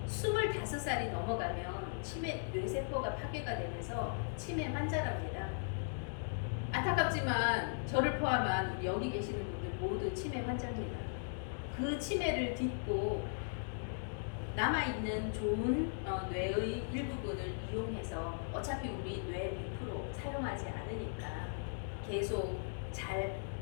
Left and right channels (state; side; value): silent; right; digital silence